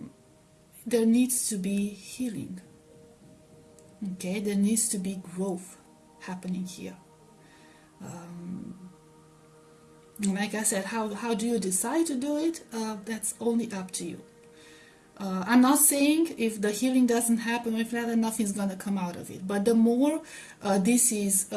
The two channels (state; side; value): identical; both; correlation 1.00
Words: needs to be healing. Okay, there needs to be growth happening here. Like I said, how do you decide to do it? That's only up to you. I'm not saying if the healing doesn't happen, if that, nothing's going to come out of it. But the more this is